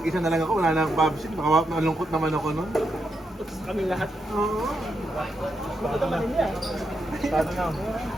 na lang ako, wala na akong babsit. Malungkot naman ako nun. Kami lahat. Oo.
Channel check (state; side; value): normal; both; correlation 0.83